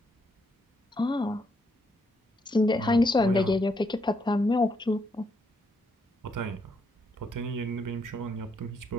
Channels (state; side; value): normal; both; correlation 0.76